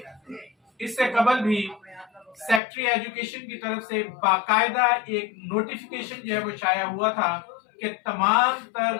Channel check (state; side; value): drops out; right; at 2.6 s